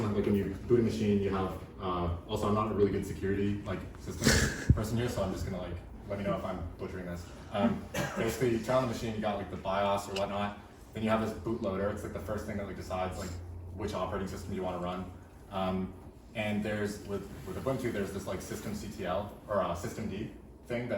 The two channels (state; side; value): identical; both; correlation 1.00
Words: on like when you boot a machine, you have, also I'm not a really good security like system person here, so I'm just gonna like, let me know if I'm butchering this. Basically you turn on the machine, you got like the BIOS or whatnot, then you have this bootloader. It's like the first thing that like decides like which operating system you want to run. And there's, with Ubuntu, there's this like systemctl or systemd thing